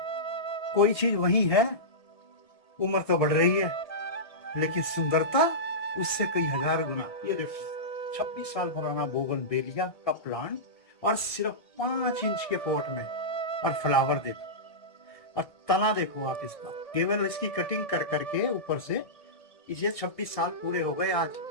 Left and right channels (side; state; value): right; late; 1.5 ms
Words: कोई चीज वही है, उम्र तो बढ़ रही है लेकिन सुंदरता उससे कई हजार गुना। ये देखो 26 साल पुराना बोगनवेलिया का प्लांट और सिर्फ 5 इंच के पॉट में, और फ्लावर देखो और तना देखो आप इसका, केवल इसकी कटिंग कर करके ऊपर से इसे 26 साल पूरे हो गए। आज